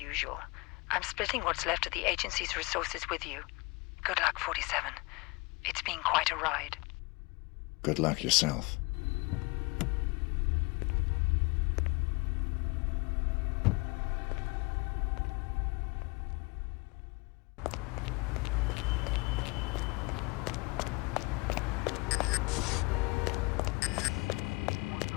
I'm splitting what's left of the agency's resources with you. Good luck, 47. It's been quite a ride. Good luck yourself.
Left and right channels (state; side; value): quieter; right; 26.3 dB